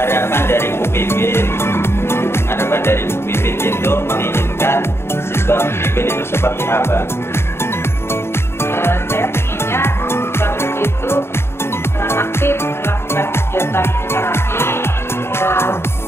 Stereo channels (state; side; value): late; right; 0.12 ms